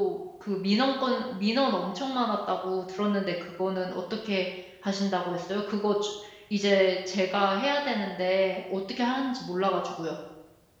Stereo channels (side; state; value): both; identical; correlation 1.00